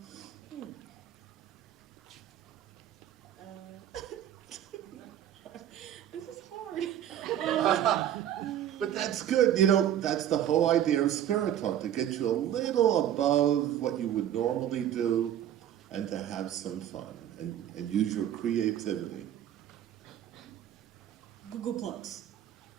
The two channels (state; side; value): quieter; left; 10.9 dB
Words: This is hard. But that's good. You know, that's the whole idea of Spirit Talk, to get you a little above what you would normally do and to have some fun and use your creativity. Google Plus.